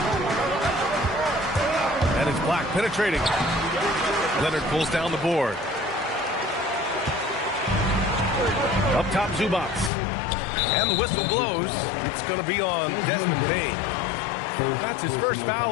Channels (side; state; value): right; drops out; at 9.9 s